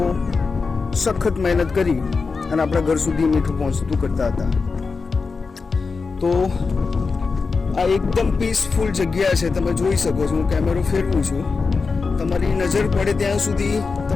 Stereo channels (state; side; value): quieter; right; 4.6 dB